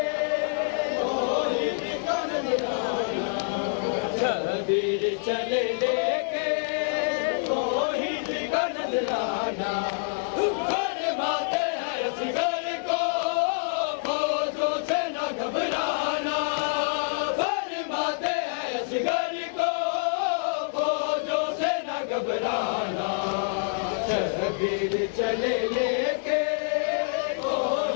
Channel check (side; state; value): right; silent; digital silence